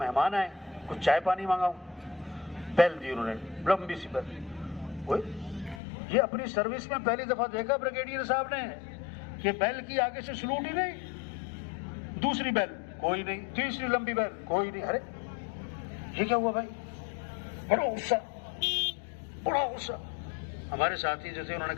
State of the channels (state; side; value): drops out; right; at 5.8 s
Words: मेहमान आए, कुछ चाय पानी मांगाऊं, बेल दी उन्होंने, लंबी सी बेल। ये अपनी सर्विस में पहली दफा देखा ब्रिगेडियर साहब ने कि बेल की आगे से सलूट ही नहीं, दूसरी बेल कोई नहीं, तीसरी लंबी बेल कोई नहीं। अरे ये क्या हुआ भाई? बड़ा गुस्सा, बड़ा गुस्सा। हमारे साथी जो थे उन्होंने